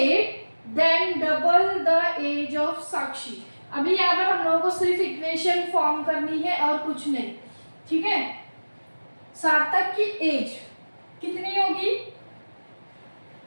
then double the age of Sakshi. अभी यहाँ पर हम लोगों को सिर्फ इक्वेशन फॉर्म करनी है और कुछ नहीं। ठीक है, सार्थक की एज कितनी होगी?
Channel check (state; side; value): inverted; both; correlation -1.00